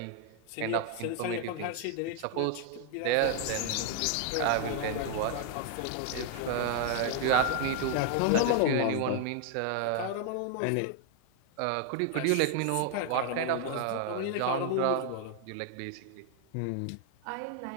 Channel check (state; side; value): different; both; correlation 0.00